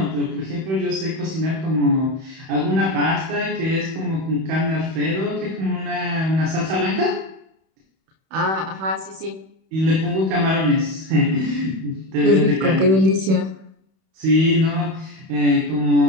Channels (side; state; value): left; late; 31 ms